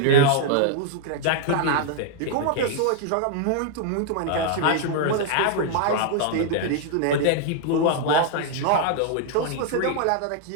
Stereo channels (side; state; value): both; different; correlation -0.01